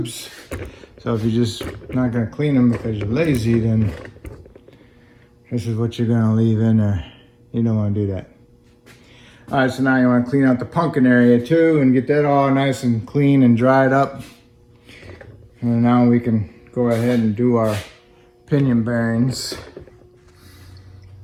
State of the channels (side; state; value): both; identical; correlation 1.00